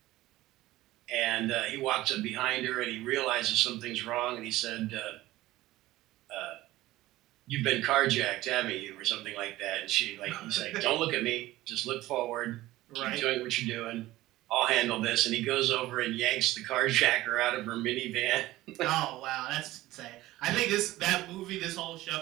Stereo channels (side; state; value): left; quieter; 16.9 dB